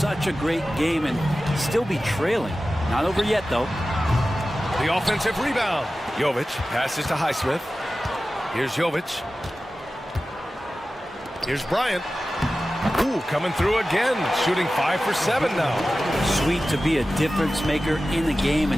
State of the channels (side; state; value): both; normal; correlation 0.95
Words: a great game and still be trailing. Not over yet, though. The offensive rebound. Jovic passes to Highsmith. Here's Jovic. Here's Bryant. Ooh, coming through again. Shooting 5 for 7 now. Sweet to be a difference maker in the game,